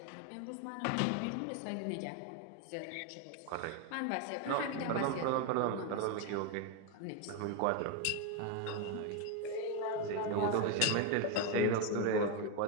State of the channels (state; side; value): different; both; correlation 0.02